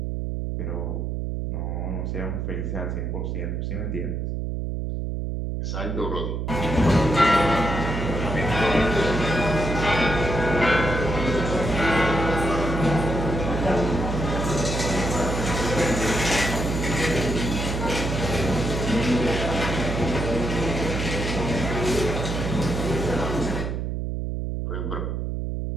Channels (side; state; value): right; noise; hum, 2 dB below the sound